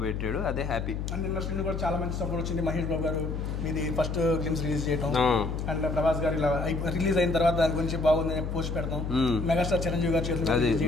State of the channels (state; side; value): noise; left; hum, 3 dB below the sound